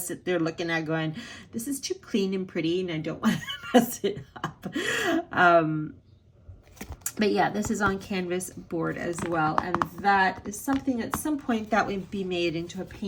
sit there looking at going, this is too clean and pretty and I don't want to mess it up. But yeah, this is on canvas board as well. And that is something at some point that would be made into a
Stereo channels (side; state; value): both; identical; correlation 1.00